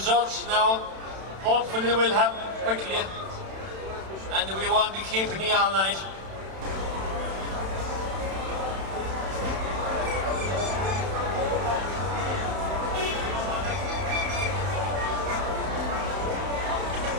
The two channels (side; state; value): left; late; 31 ms